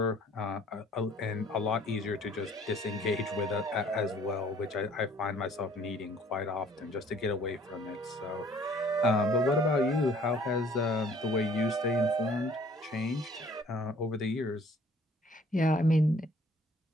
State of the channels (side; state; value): both; normal; correlation 0.56